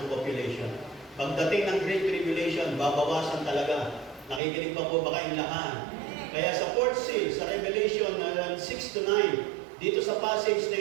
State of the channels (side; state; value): left; drops out; at 4.4 s